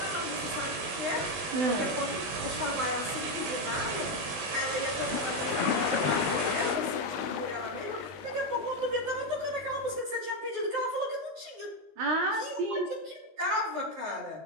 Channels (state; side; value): late; left; 20 ms